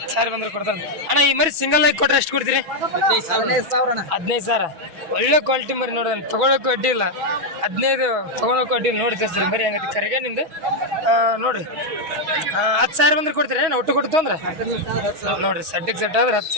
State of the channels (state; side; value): late; left; 6.2 ms